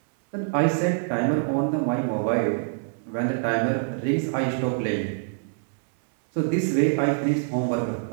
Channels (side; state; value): left; silent; digital silence